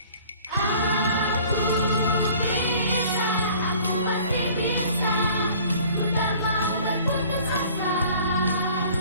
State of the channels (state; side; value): inverted; both; correlation -0.50